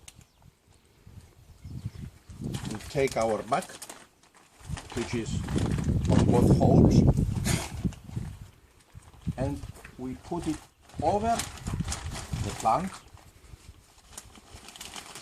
We take our bag, which is on both holes, and we put it over the plant.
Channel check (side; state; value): both; identical; correlation 1.00